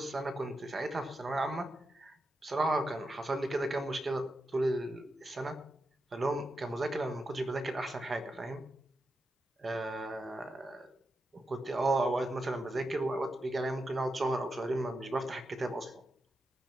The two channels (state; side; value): normal; both; correlation 0.87